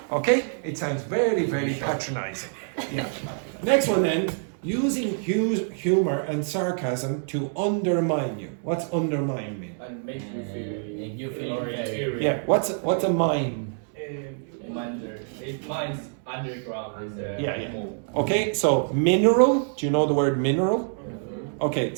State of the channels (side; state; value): left; silent; digital silence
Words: Okay? It sounds very, very patronizing. Yeah. Next one then. Using humor and sarcasm to undermine you. What's undermine mean? And make you feel inferior. Yeah. What's a mine? It mines underground is Yeah. more. Okay. So mineral. Do you know the word mineral? Okay.